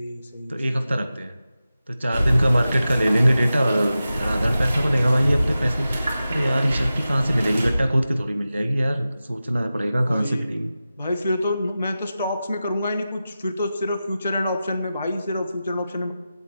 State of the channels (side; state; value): both; inverted; correlation -0.93